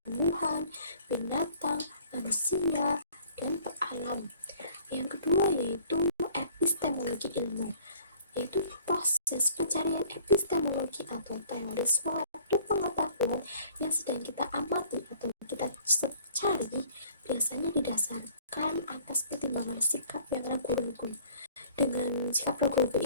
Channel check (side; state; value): both; inverted; correlation -0.54